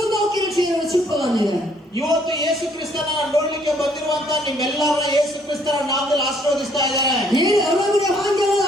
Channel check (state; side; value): normal; both; correlation 0.65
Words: 없기를 주의로 축복합니다. ಇವತ್ತು ಯೇಸು ಕ್ರಿಸ್ತನ ನೋಡ್ಲಿಕ್ಕೆ ಬಂದಿರುವಂತ ನಿಮ್ಮೆಲ್ಲರನ್ನ ಯೇಸು ಕ್ರಿಸ್ತನ ನಾಮದಲ್ಲಿ ಆಶೀರ್ವದಿಸ್ತಾ ಇದ್ದಾರೆ. 예, 여러분의 환경은